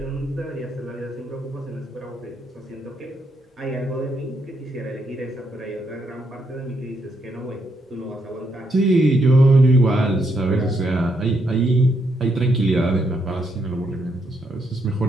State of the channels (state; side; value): normal; both; correlation 0.77